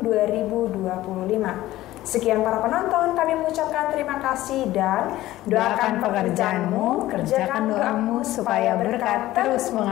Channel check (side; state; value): right; quieter; 15.7 dB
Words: 2025. Sekian para penonton, kami mengucapkan terima kasih dan doakan pekerjaanmu, kerjakan doamu supaya berkat terus